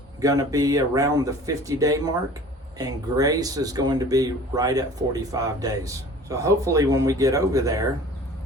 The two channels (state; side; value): normal; both; correlation 0.45